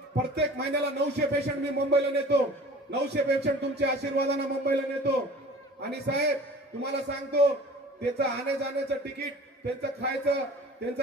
प्रत्येक महिन्याला 900 पेशंट मी मुंबईला नेतो. 900 पेशंट तुमच्या आशीर्वादाने मुंबईला नेतो. आणि साहेब तुम्हाला सांगतो, त्याचं आणे जाण्याचं तिकीट, त्यांचं खायचं, त्यांचं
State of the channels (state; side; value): normal; both; correlation 0.44